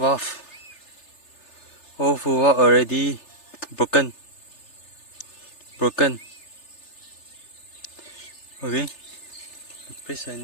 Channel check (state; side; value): late; right; 3.3 ms